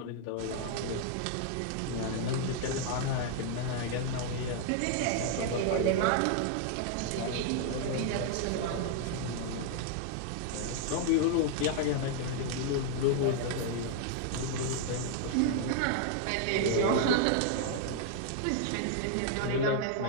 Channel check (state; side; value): different; both; correlation 0.00